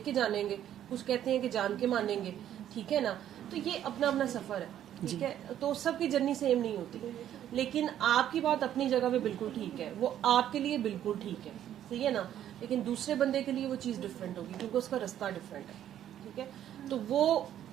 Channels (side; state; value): left; quieter; 11.0 dB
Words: کے جانیں گے, کچھ کہتے ہیں کہ جان کے مانیں گے, ٹھیک ہے نا. تو یہ اپنا اپنا سفر ہے, ٹھیک ہے, تو سب کی جرنی سیم نہیں ہوتی, لیکن آپ کی بات اپنی جگہ پہ بالکل ٹھیک ہے, وہ آپ کے لیے بالکل ٹھیک ہے, صحیح ہے نا, لیکن دوسرے بندے کے لیے وہ چیز ڈفرینٹ ہوگی کیونکہ اس کا رستہ ڈفرینٹ ہے, ٹھیک ہے. تو وہ